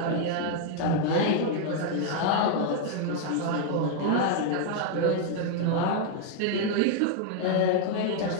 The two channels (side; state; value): both; different; correlation 0.00